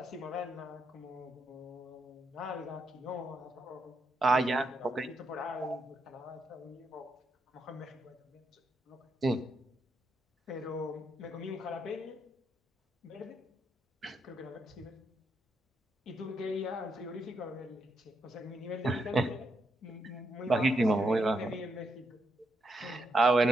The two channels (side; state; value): both; normal; correlation 0.80